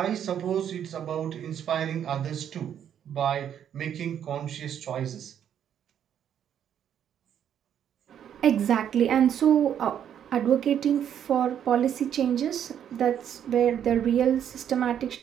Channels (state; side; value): quieter; left; 9.4 dB